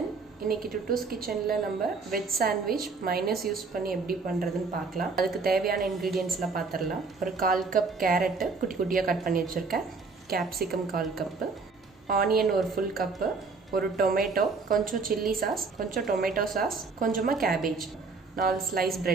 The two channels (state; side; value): quieter; left; 4.4 dB